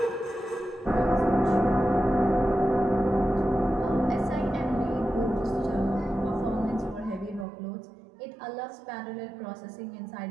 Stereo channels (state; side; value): drops out; left; at 7.5 s